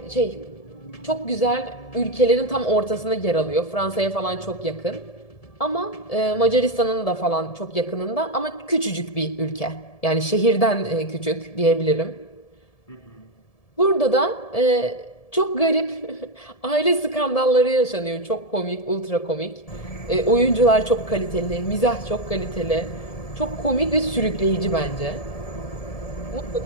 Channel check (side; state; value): right; late; 1.7 ms